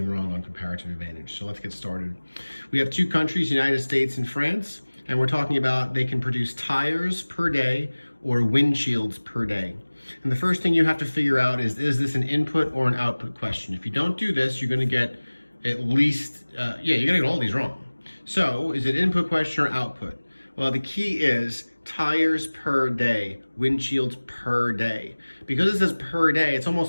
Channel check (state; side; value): inverted; both; correlation -1.00